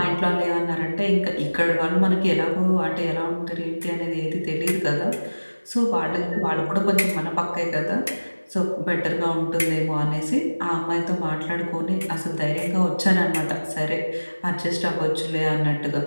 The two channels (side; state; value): both; inverted; correlation -1.00